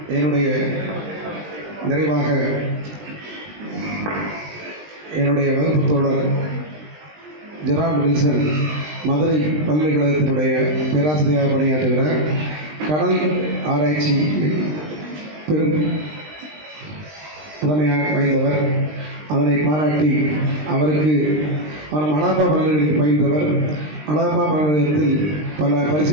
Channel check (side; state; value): left; late; 20 ms